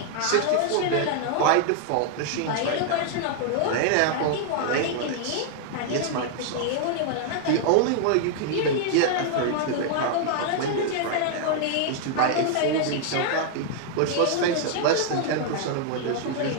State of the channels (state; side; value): different; both; correlation -0.01